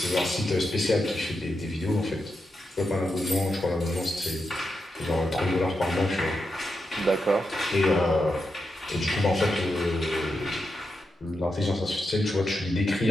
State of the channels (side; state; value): both; normal; correlation 0.86